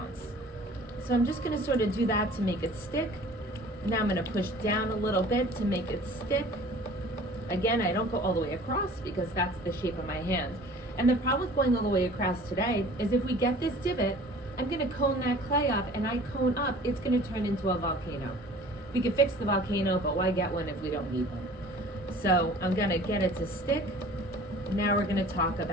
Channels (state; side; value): normal; both; correlation 0.47